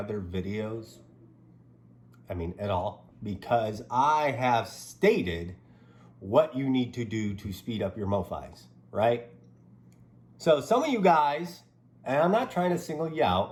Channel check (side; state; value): both; identical; correlation 1.00